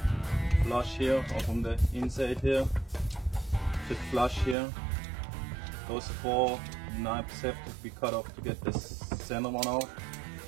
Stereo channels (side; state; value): left; drops out; at 4.5 s